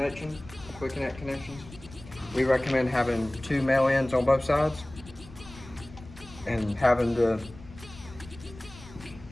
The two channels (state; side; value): noise; left; rumble, 18 dB below the sound